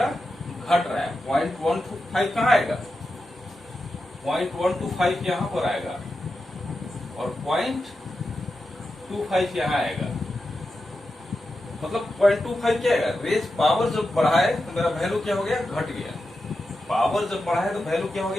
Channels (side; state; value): both; normal; correlation 0.90